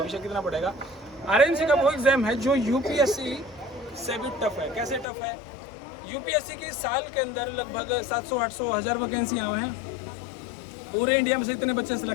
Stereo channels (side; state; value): right; drops out; at 5.1 s